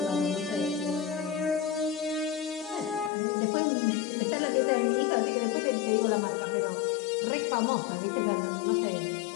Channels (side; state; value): right; drops out; at 3.1 s